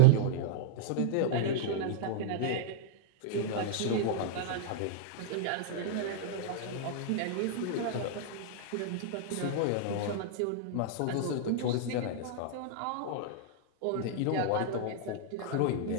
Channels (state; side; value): different; both; correlation -0.01